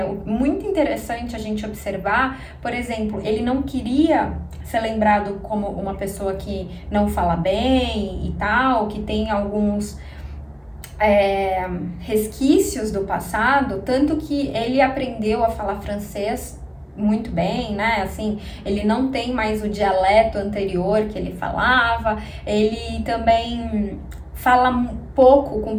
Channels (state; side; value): identical; both; correlation 1.00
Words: muito interessante a gente observar, por exemplo, ele não queria ser lembrado como uma pessoa que não fala bem e tal, que tem alguns resquícios do passado, tanto que ele aprendeu a falar francês muito bem, né? Assim, ele não tem mais o dialeto anterior que ele falava, ele também fala pouco com